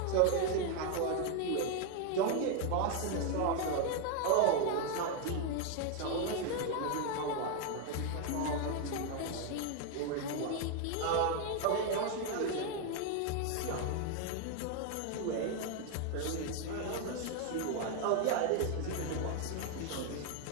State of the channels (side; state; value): both; different; correlation 0.01